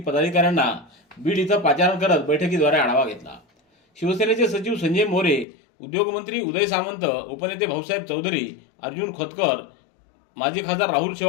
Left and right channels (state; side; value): drops out; right; at 5.5 s